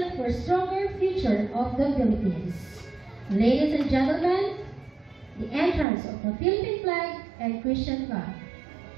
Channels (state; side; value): drops out; left; at 5.9 s